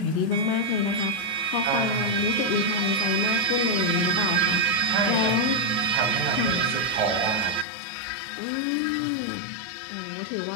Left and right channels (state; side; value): drops out; right; at 7.7 s